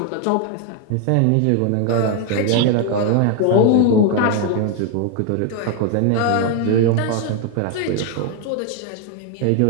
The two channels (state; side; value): different; both; correlation 0.01